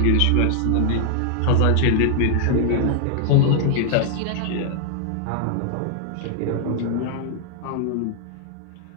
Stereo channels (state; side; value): different; both; correlation 0.00